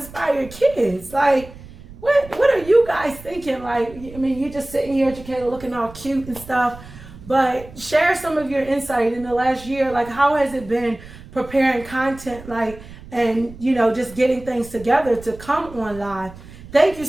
Kids. Like, what are you guys thinking? Like, I mean, you're just sitting here, educated, looking all cute and stuff. But share some of your insight in the last year. Like, how has it been preparing content, and just getting things together to come on live? Thank you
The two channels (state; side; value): noise; right; rumble, 17 dB below the sound